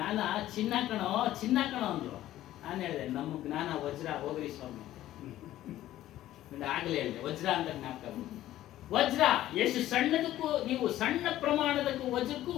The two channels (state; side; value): quieter; right; 13.9 dB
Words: ಚಿನ್ನ ಕಣೋ ಅಂದ್ರು. ನಾನು ಹೇಳಿದೆ, ನಮ್ಮ ಜ್ಞಾನ ವಜ್ರ, ಹೋಗ್ರಿ ಸ್ವಾಮಿ. ಆಗಲೇ ಹೇಳಿದೆ, ವಜ್ರ ಅಂತ ಜ್ಞಾಪಕ. ವಜ್ರ ಎಷ್ಟು ಸಣ್ಣದಕ್ಕೂ, ನೀವು ಸಣ್ಣ ಪ್ರಮಾಣದಕ್ಕೂ ವಜ್ರಕ್ಕೂ